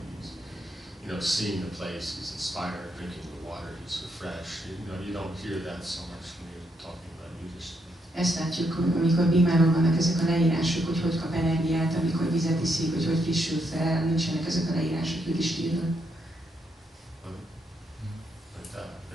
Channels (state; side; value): normal; both; correlation 0.78